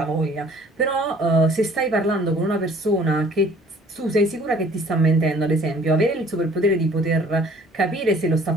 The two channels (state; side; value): normal; both; correlation 0.54